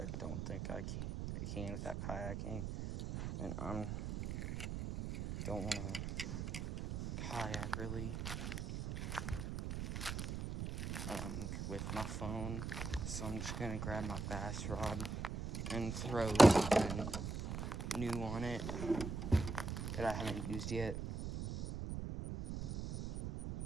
don't think I can with that kayaking. And I don't want to kayak really. with my phone. So I'm just gonna grab my bass rod and throw something new on it that I haven't used yet.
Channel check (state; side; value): noise; right; rumble, 4 dB below the sound